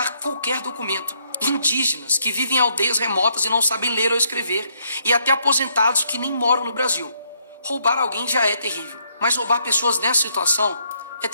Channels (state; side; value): inverted; both; correlation -0.72